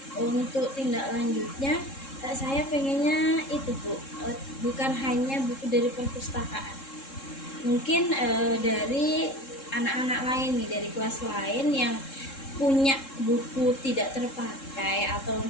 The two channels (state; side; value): late; right; 3.7 ms